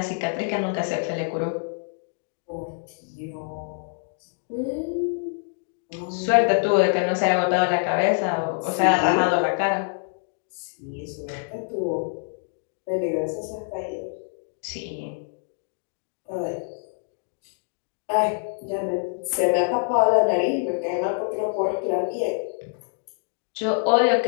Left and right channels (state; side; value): silent; right; 61 dB below the other